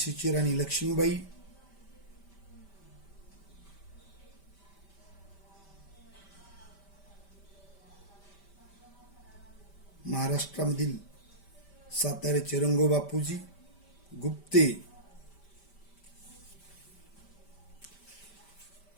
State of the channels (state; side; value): late; right; 5.1 ms